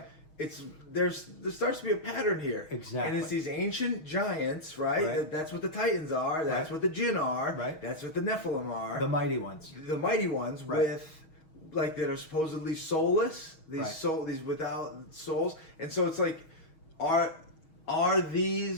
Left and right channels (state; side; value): late; right; 6.3 ms